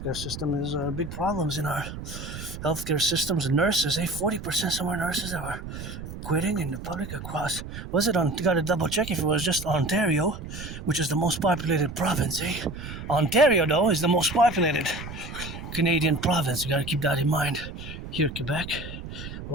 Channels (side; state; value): right; noise; rumble, 10 dB below the sound